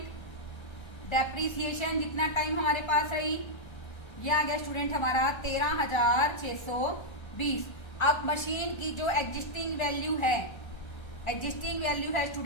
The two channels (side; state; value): right; late; 1.3 ms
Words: डेप्रिसिएशन जितना टाइम हमारे पास रही, ये आ गया स्टूडेंट हमारा 13,620। अब मशीन की जो एग्जिस्टिंग वैल्यू है,